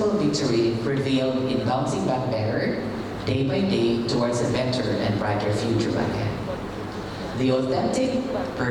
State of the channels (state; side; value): identical; both; correlation 1.00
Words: victory prevailed in bouncing back better, day by day, towards a better and brighter future ahead. The authentic,